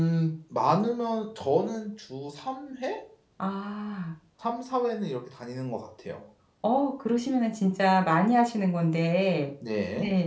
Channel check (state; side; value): identical; both; correlation 1.00